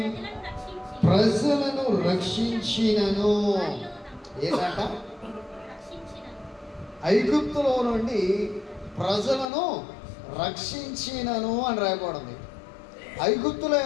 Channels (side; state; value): right; drops out; at 9.5 s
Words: ప్రజలను రక్షించినను. ఏంటంట? ఐగుప్తులో నుండి ప్రజలను రక్షించినను అని రాయబడింది. ఐగుప్తులో